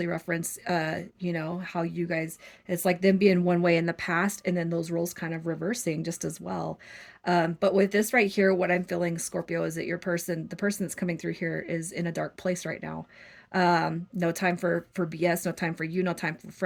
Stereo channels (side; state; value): both; identical; correlation 1.00